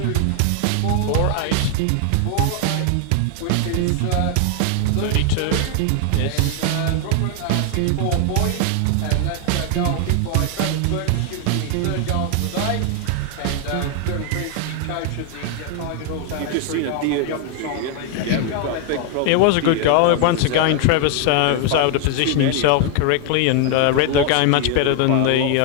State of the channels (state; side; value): different; both; correlation 0.00